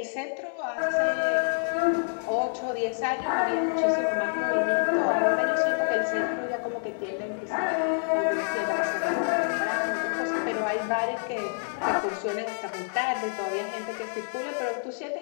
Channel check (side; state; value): right; silent; 60 dB below the other